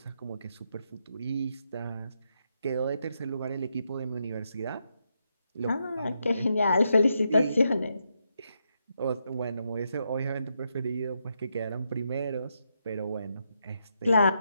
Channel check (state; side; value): inverted; both; correlation -0.81